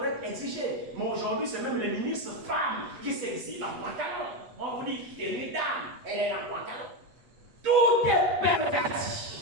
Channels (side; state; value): left; late; 8.2 ms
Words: exigée. Mais aujourd'hui, c'est même les ministres femmes qui s'exilent en pantalon. On vous dit, tenue dame, elle est en pantalon. Tout est